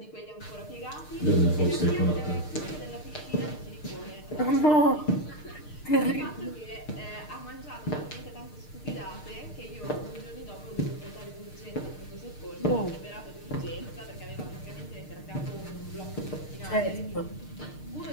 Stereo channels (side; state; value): right; late; 6.6 ms